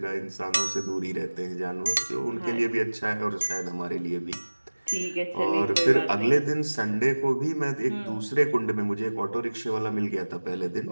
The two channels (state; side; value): inverted; both; correlation -1.00